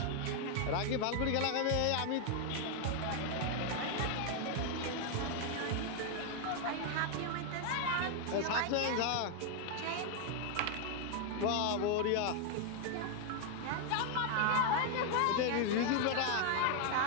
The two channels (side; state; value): both; different; correlation 0.00